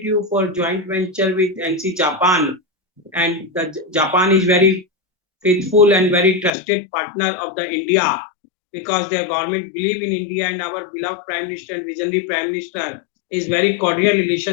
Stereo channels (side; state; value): right; drops out; at 6.5 s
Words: you for joint venture with NC Japan. And the Japan is very faithful and very trusted partner of the India, because their government believe in India, and our beloved Prime Minister and visionary Prime Minister is very cordial